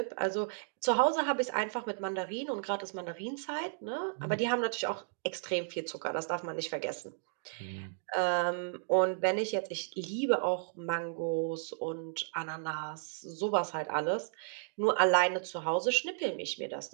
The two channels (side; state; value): left; silent; digital silence